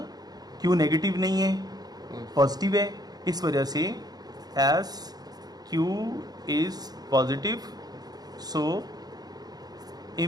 क्यों नेगेटिव नहीं है, पॉजिटिव है। इस वजह से S Q is positive, so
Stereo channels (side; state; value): left; late; 0.19 ms